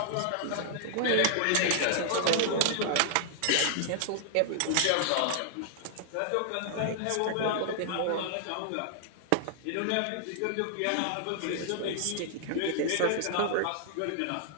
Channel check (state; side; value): different; both; correlation -0.01